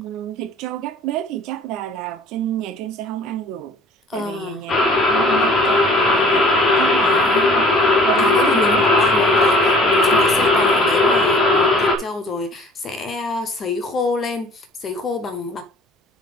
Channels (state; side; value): normal; both; correlation 0.51